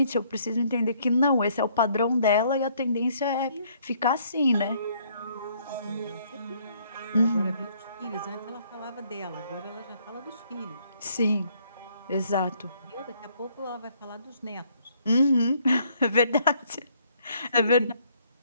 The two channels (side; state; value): both; inverted; correlation -0.65